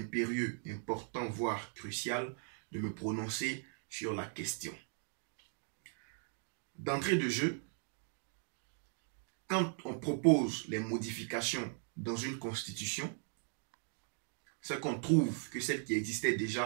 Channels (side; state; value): left; silent; 52 dB below the other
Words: important, voire crucial de me prononcer sur la question. D'entrée de jeu, quand on propose les modifications dans une constitution, c'est qu'on trouve que celle qui existait